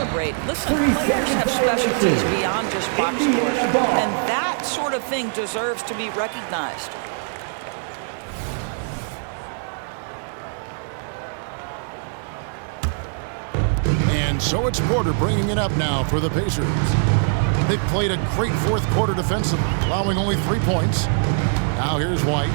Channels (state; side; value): silent; left; digital silence